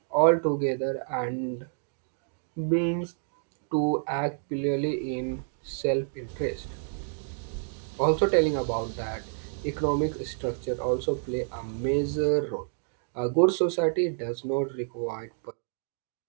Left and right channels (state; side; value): silent; left; digital silence